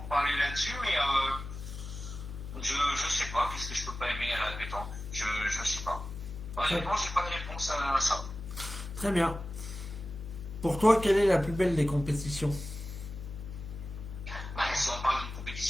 parler là-dessus, mais je sais pas, qu'est-ce que je peux pas aimer à la pétanque. Je sais pas. Honnêtement, j'ai pas de réponse à ça. Très bien. Pour toi, quelle est la plus belle des compétitions? Bah, si on parle d'une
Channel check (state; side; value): noise; left; hum, 9 dB below the sound